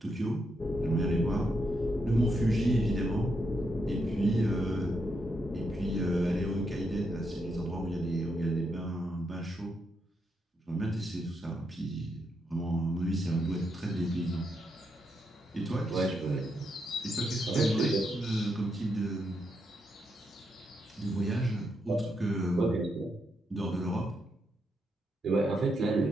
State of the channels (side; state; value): both; normal; correlation 0.81